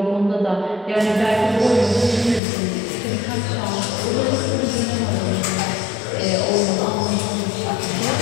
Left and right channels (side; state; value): right; drops out; at 2.4 s